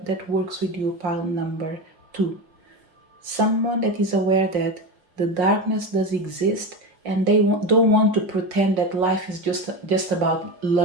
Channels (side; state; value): left; late; 5.5 ms